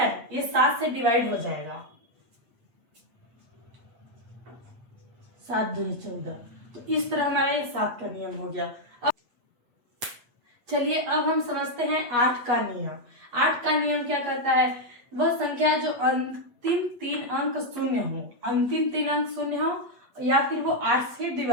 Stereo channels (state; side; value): late; left; 8.3 ms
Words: ये 7 से डिवाइड हो जाएगा, 7 दूनी 14। तो इस तरह हमारा ये 7 का नियम हो गया। चलिए अब हम समझते हैं 8 का नियम। 8 का नियम क्या कहता है? वह संख्या जो अंतिम 3 अंक शून्य हो, अंतिम 3 अंक शून्य हो या फिर वो 8 से